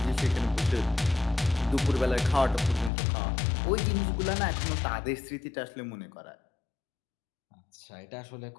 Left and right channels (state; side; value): drops out; right; at 2.9 s